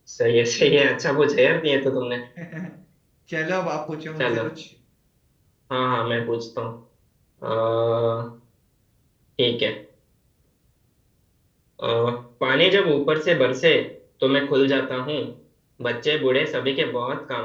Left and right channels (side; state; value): both; identical; correlation 1.00